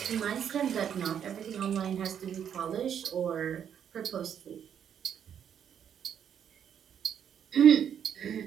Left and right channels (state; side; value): quieter; left; 8.7 dB